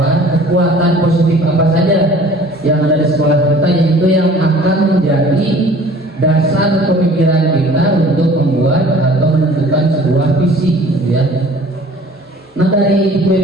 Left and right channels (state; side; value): normal; both; correlation 0.49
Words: kekuatan positif apa saja yang ada di sekolah kita, yaitu yang akan menjadi dasar pemikiran kita untuk membuat atau menentukan sebuah visi, ya. Nah dari